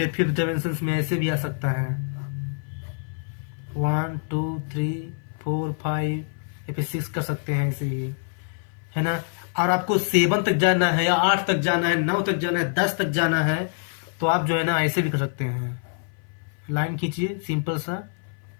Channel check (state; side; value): silent; right; 56 dB below the other